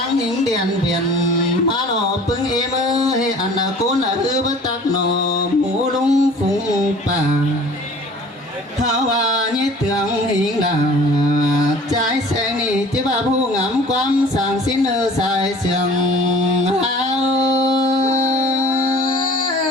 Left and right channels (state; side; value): normal; both; correlation 0.47